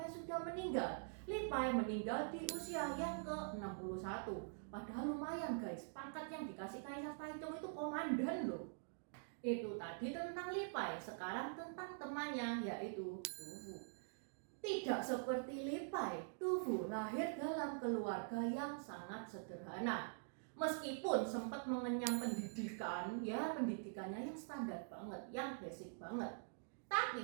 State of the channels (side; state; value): left; silent; digital silence